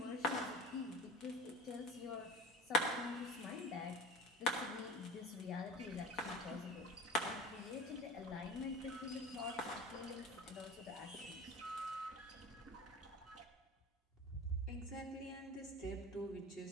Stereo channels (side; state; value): both; normal; correlation 0.33